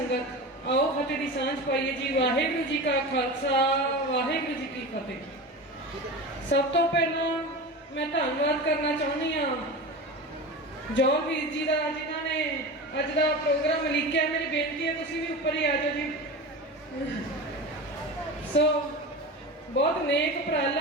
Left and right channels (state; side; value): normal; both; correlation 0.28